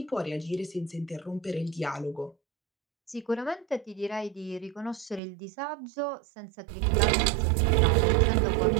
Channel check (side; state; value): left; drops out; at 5.2 s